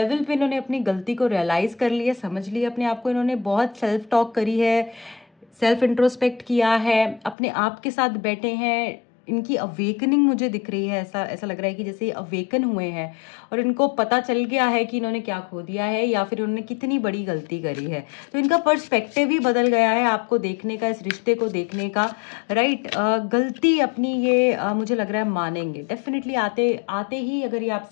पे इन्होंने अपनी गलती को रियलाइज़ कर लिया, समझ लिया अपने आप को। इन्होंने बहुत सेल्फ टॉक करी है, सेल्फ इंट्रोस्पेक्ट किया है, अपने आप के साथ बैठे हैं। इनकी अवेकनिंग मुझे दिख रही है, ऐसा ऐसा लग रहा है कि जैसे ये अवेकन हुए हैं और इनको पता चल गया है कि इन्होंने क्या खो दिया है या फिर उन्होंने कितनी बड़ी गलती करी है। तो इनका पर्सपेक्टिव ही बदल गया है आपको देखने का, इस रिश्ते को देखने का। राइट, गलती अपनी ये मुझे लग रहा है मानेंगे डेफिनेटली। आते आते ही अगर ये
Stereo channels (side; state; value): right; drops out; at 7.4 s